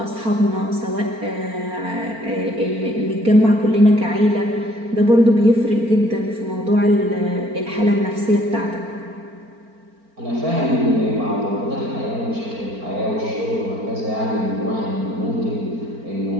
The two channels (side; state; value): left; late; 4.4 ms